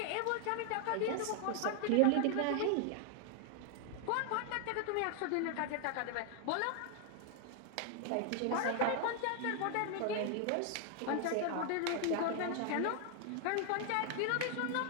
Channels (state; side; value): different; both; correlation 0.00